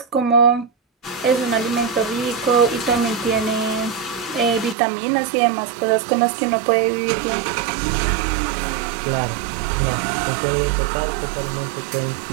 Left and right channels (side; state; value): left; drops out; at 4.8 s